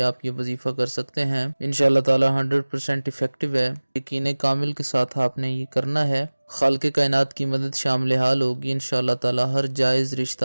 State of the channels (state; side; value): inverted; both; correlation -1.00